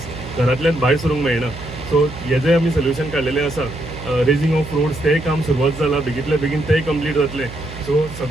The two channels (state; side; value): noise; right; hum, 13 dB below the sound